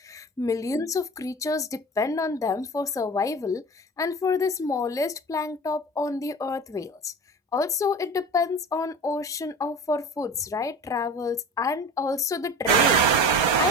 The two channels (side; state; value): both; normal; correlation 0.35